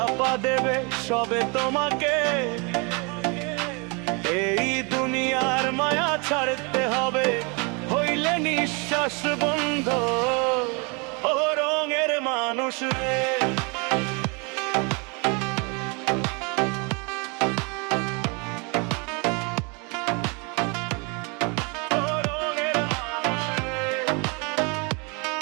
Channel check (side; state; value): left; quieter; 31.7 dB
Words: দেবে সবে তোমাকে। এই দুনিয়ার মায়া ছাড়তে হবে, হইলে নিঃশ্বাস বন্ধ। ও রঙের মানুষ রে,